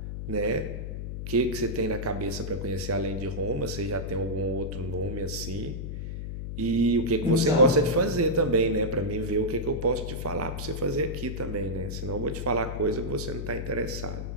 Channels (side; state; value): left; noise; hum, 6 dB below the sound